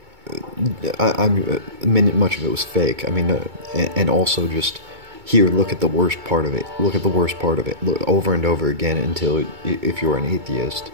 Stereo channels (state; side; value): late; left; 2.2 ms